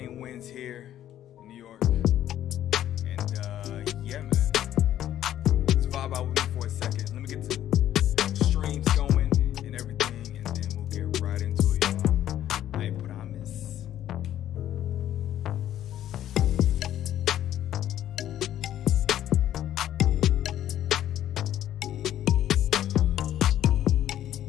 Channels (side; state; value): right; quieter; 11.8 dB